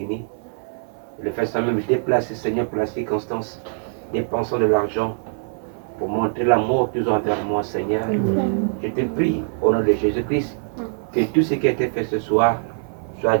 Le fait ça même déplacer, Seigneur, pour la circonstance, dépensant de l'argent pour montrer l'amour qu'ils ont envers moi, Seigneur. Je te prie, au nom de Jésus-Christ, que tout ce qui a été fait ce soir soit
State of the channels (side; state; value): left; silent; 61 dB below the other